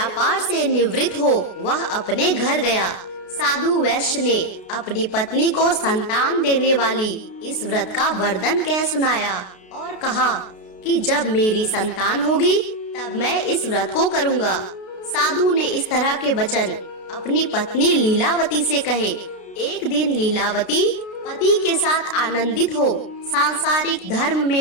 से निवृत्त हो वह अपने घर गया। साधु वैश्य ने अपनी पत्नी को संतान देने वाली इस व्रत का वरदान कह सुनाया और कहा कि जब मेरी संतान होगी तब मैं इस व्रत को करूँगा। साधु ने इस तरह के वचन अपनी पत्नी लीलावती से कहे। एक दिन लीलावती पति के साथ आनंदित हो सांसारिक धर्म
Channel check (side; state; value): right; late; 32 ms